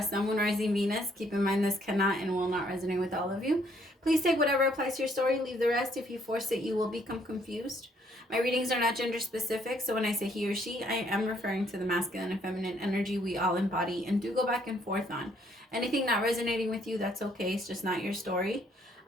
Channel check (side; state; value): both; normal; correlation 0.67